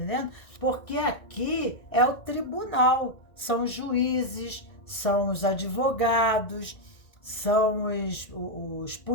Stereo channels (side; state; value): right; late; 1.9 ms